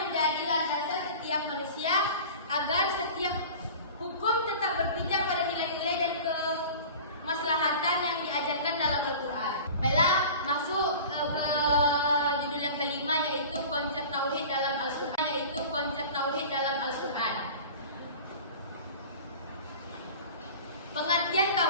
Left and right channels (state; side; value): inverted; both; correlation -0.38